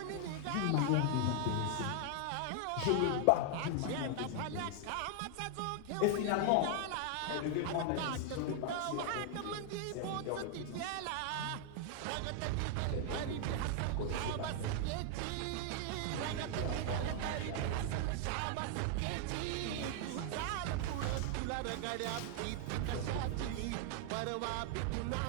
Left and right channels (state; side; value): different; both; correlation 0.00